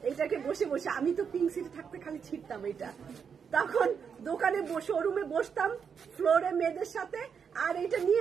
এইটাকে বসে বসে, আমি তো পিঙ্ক সিটে থাকতে খালি ছিটতাম এটা, তখন দোকানে শোরুমে বসতাম ফ্লোরে মেয়েদের সাথে, আর এটা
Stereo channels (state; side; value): quieter; left; 6.7 dB